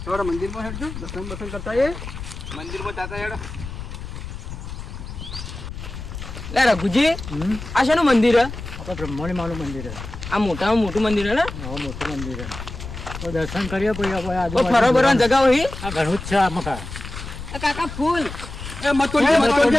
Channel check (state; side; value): noise; left; rumble, 10 dB below the sound